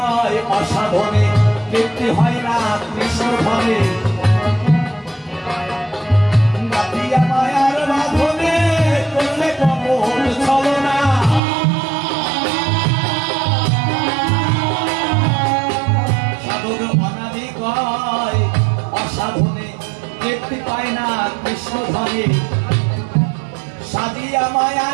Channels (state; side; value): drops out; left; at 11.4 s